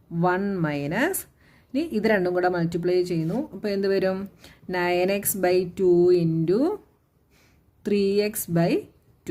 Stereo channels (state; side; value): identical; both; correlation 1.00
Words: 1 മൈനസ്, ഇനി ഇത് രണ്ടും കൂടെ മൾട്ടിപ്ലൈ ചെയ്യുന്നു. അപ്പോൾ എന്ത് വരും? 9x/2 into